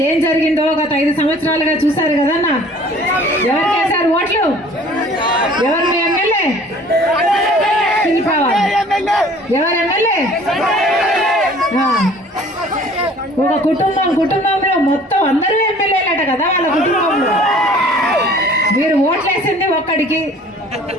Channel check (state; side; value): normal; both; correlation 0.51